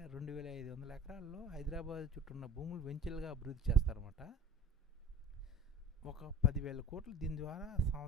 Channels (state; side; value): normal; both; correlation 0.41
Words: 2500 ఎకరాల్లో హైదరాబాద్ చుట్టూ ఉన్న భూములు వెంచర్లుగా అభివృద్ధి చేస్తారన్నమాట. ఒక 10,000 కోట్లు దీని ద్వారా